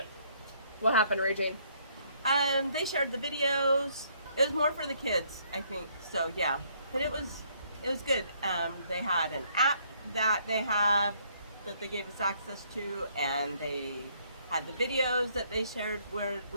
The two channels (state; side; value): inverted; both; correlation -0.67